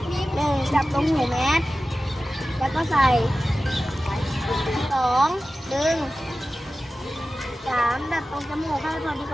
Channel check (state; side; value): normal; both; correlation 0.95